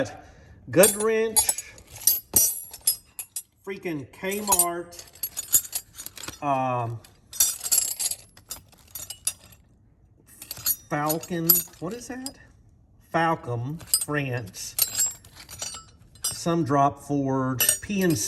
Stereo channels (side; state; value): both; identical; correlation 1.00